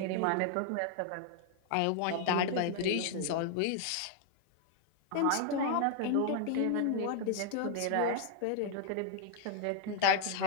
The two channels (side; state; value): both; different; correlation 0.00